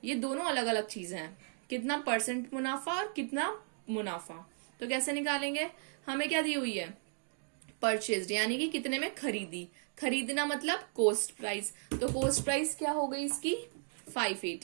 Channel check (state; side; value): silent; left; 54 dB below the other